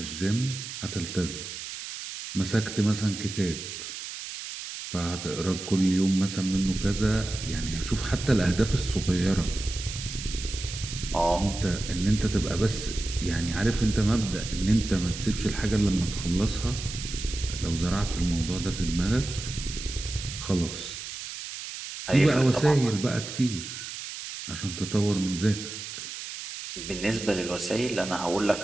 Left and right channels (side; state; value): right; noise; hiss, 9 dB below the sound